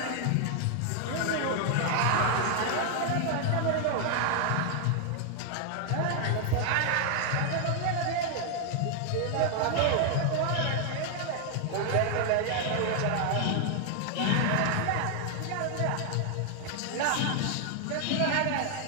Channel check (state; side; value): different; both; correlation 0.00